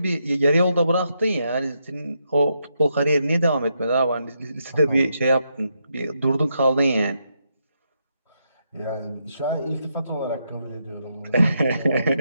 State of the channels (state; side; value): inverted; both; correlation -0.80